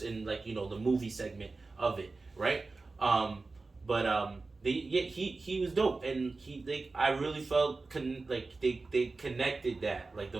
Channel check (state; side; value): quieter; left; 3.7 dB